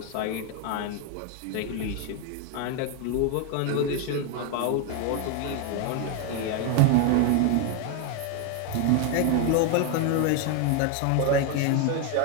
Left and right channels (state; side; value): different; both; correlation 0.01